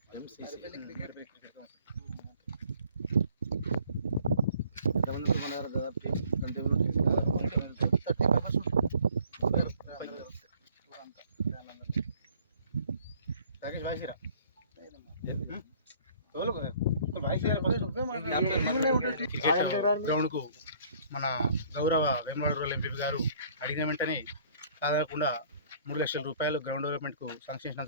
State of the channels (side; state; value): both; inverted; correlation -0.57